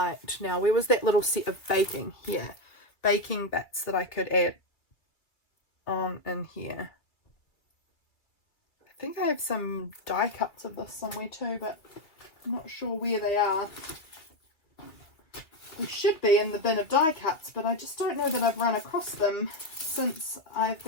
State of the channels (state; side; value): late; right; 2.3 ms